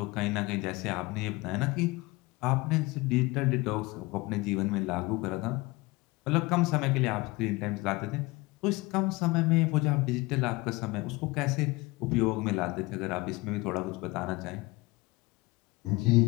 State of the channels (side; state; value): right; quieter; 22.8 dB